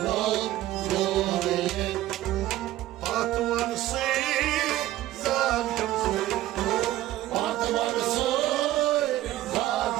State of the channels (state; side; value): quieter; left; 15.0 dB